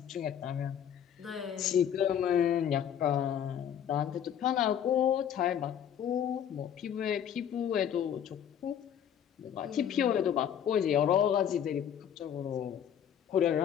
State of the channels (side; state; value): right; quieter; 9.1 dB